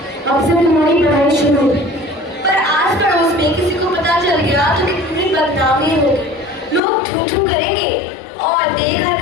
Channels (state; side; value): drops out; right; at 6.8 s